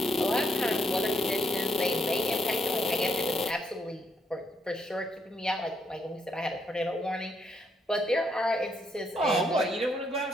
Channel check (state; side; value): normal; both; correlation 0.74